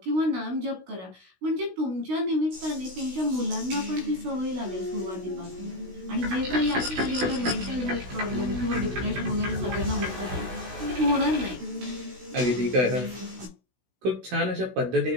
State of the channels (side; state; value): left; late; 16 ms